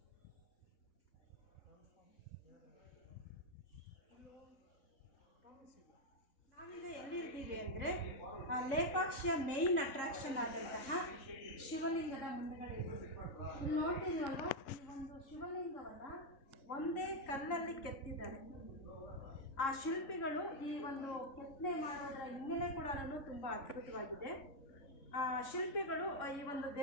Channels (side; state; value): right; late; 3.7 ms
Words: ನಾವಿಂದ ಎಲ್ಲಿರ್ತೀವಿ ಅಂದರೆ, ಲೇಪಾಕ್ಷಿಯ ಮೇಯ್ನ್ ಅಟ್ರಾಕ್ಷನ್ ಆದಂತಹ ಶಿವಲಿಂಗದ ಮುಂದುಗಡೆ ಇದ್ದೀವಿ. ಇಲ್ಲಿ ನೋಡ್ತಿದ್ವಲ್ವ, ಈ ಒಂದು ಶಿವಲಿಂಗವನ್ನು ಒಂದೇ ಕಲ್ಲಲ್ಲಿ ಕೆತ್ತಿದ್ದಾರೆ. ಆ ಶಿಲ್ಪಿಗಳು ಈ ಒಂದು ಕೆತ್ತನೆ ಮಾಡೋದರ ಹಿನ್ನೆಲೆ ಕೂಡ ತುಂಬ ಅದ್ಭುತವಾಗಿದೆ. ಶಿಲ್ಪಿಗಳು ಈ ಒಂದು